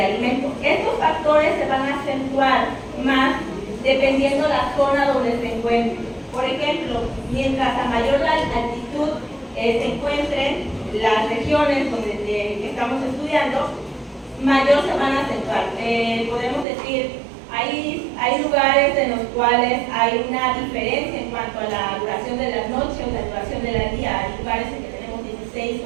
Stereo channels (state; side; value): drops out; left; at 16.7 s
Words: alimentos. Estos factores se van a acentuar más dependiendo la zona donde se encuentren. Por ejemplo, mientras a mayor altitud se encuentren las regiones que estamos estudiando, mayor se van a acentuar. Podemos decir, hay lugares en los cuales hay una diferencia en cuanto a la duración de la noche o la duración del día. Hay lugares en que tenemos 16